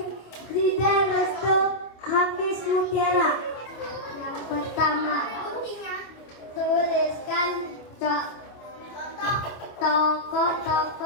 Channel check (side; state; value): right; late; 25 ms